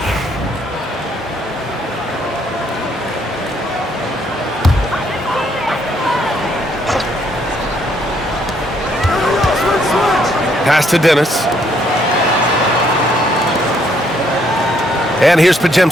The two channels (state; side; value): normal; both; correlation 0.70